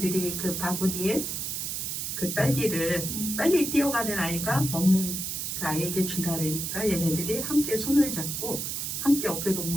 그 바구니에 그 딸기를 빨리 뛰어가는 아이가 먹는 그 아이에게 준다 그러니까 얘네들이 함께 손을 잡고 함께 어깨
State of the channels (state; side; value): noise; right; hiss, 3 dB below the sound